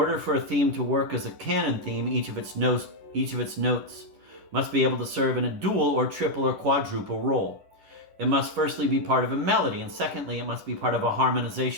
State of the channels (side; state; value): left; late; 10 ms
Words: for a theme to work as a canon theme, each of its notes must be able to serve in a dual or triple or quadruple role. It must firstly be part of a melody, and secondly, it must be part of a